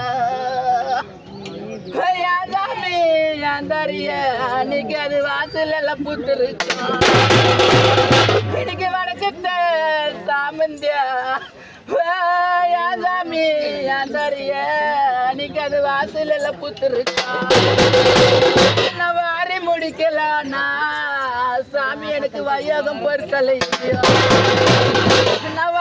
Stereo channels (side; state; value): both; identical; correlation 1.00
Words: அன்னைக்கு அது வாசல் எல்லாம் புத்துருச்சு இன்னைக்கு வடக்கத்த சாமந்தியா சாமி அன்னைக்கு அது வாசல் எல்லாம் புத்துருச்சு வாரி முடிக்கலானா சாமி எனக்கு வையகம் பொறுக்கலை நான்